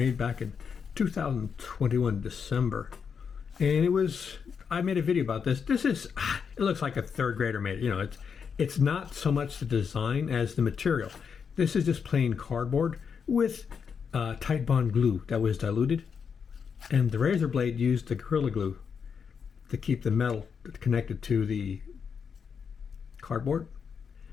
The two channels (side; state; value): right; quieter; 6.5 dB